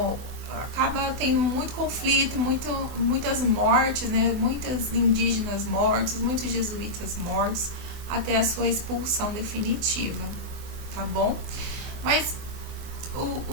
tendo muito conflito, muitas mortes, né? Muitos indígenas mortos, muitos jesuítas mortos, até a sua expulsão definitiva, tá bom? Mas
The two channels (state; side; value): late; left; 24 ms